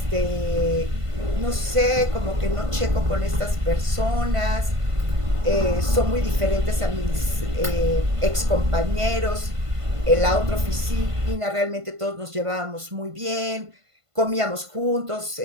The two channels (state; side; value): late; left; 1.5 ms